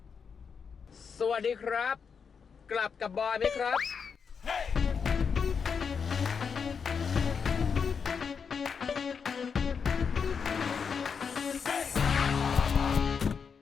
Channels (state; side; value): quieter; right; 6.2 dB